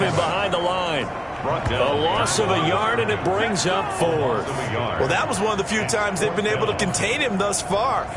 him behind the line. A loss of a yard, and it brings up fourth. Well, that was one of the few times they've been able to contain him thus far.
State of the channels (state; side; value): identical; both; correlation 1.00